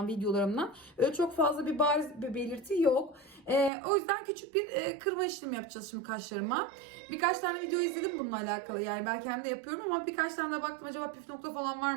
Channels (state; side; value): drops out; left; at 3.7 s